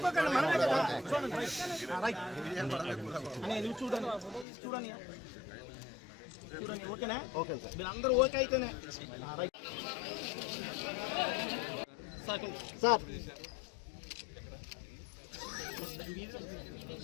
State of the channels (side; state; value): right; drops out; at 4.5 s